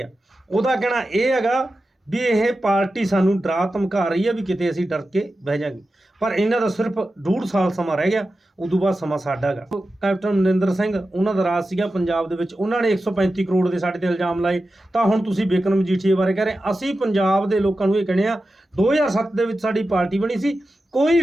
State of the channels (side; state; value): both; normal; correlation 0.92